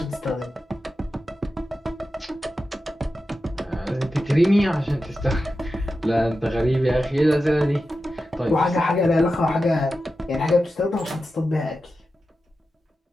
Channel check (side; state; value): both; normal; correlation 0.91